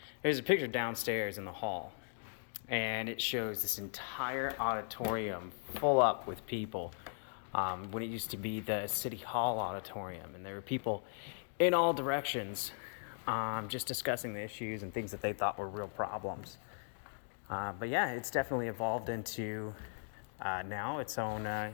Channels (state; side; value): silent; right; digital silence